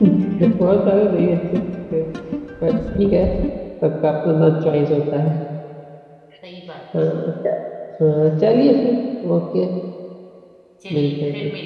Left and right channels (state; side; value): identical; both; correlation 1.00